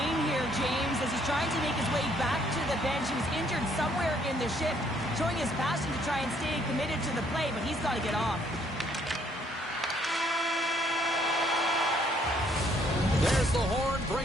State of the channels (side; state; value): both; normal; correlation 0.66